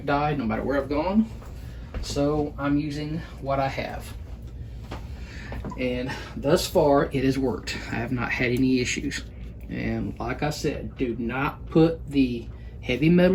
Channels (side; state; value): both; identical; correlation 1.00